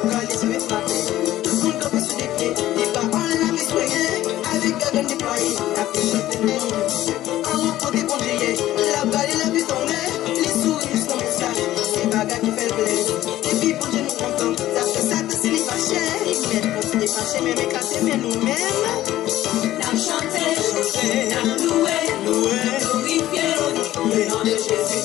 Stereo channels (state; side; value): quieter; right; 14.3 dB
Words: met ma paix. Tout le monde peut se défier. Les paroles la vie soignée. Avec la gagne déployée. La paix chante le nom de Dieu. En repos des congéliers. La balle et la vie tombée. Les souris juste comme ça. C'est bagarre qui fait le plaisir. Et puis pour Dieu nous contents. Ça fait ça que c'est les fâchés. Ils mettent pour se défâcher. Mais éclater, mais nous-mêmes. N'a chanté, n'a loué, glorifié le nom de Jésus.